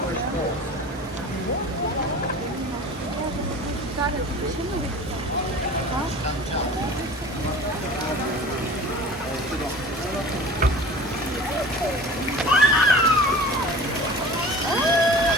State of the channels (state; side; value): normal; both; correlation 0.40